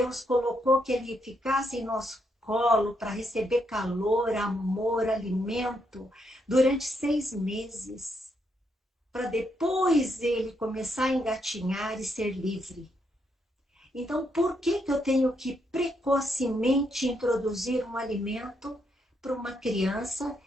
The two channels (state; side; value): normal; both; correlation 0.78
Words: colocou que ele ficasse em nosso colo para receber calor, amor, alimento durante 6 meses, para depois ele começar a engatinhar e ser livre. Então, por que eu tenho que precocemente introduzir um alimento para uma criança